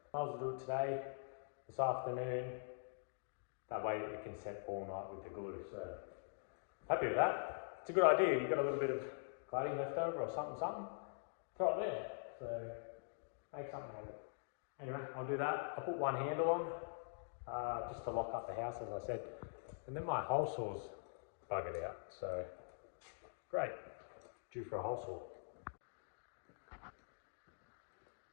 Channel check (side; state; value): right; silent; digital silence